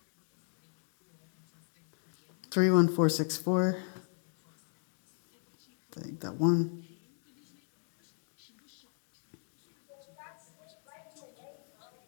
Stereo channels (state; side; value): silent; right; digital silence